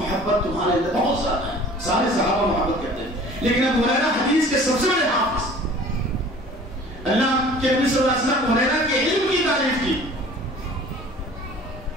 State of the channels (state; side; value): normal; both; correlation 0.47